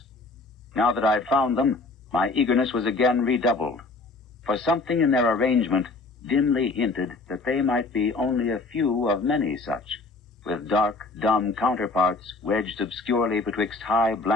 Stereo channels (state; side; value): quieter; right; 3.5 dB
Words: Now that I had found them, my eagerness was again redoubled, for something in their arrangement dimly hinted that they might be only a few of many such, with dark, dumb counterparts wedged obscurely betwixt high